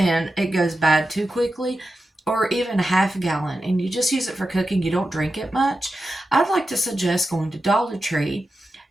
it goes bad too quickly, or even a half a gallon, and you just use it for cooking, you don't drink it much, I'd like to suggest going to Dollar Tree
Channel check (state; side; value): normal; both; correlation 0.91